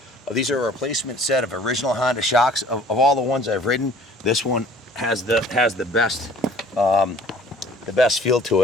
These are a replacement set of original Honda shocks. Of all the ones I've ridden, this one has the best feel to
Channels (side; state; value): both; normal; correlation 0.52